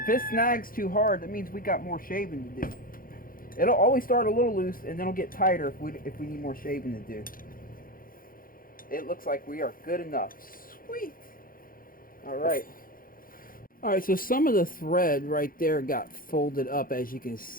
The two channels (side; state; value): right; late; 0.41 ms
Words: it snags too hard, that means we got more shaving to do. It'll always start a little loose and then it'll get tighter if we need more shaving to do. It looks like we are good enough. Sweet. Alright. Alright, so some of the thread right there got folded up, as you can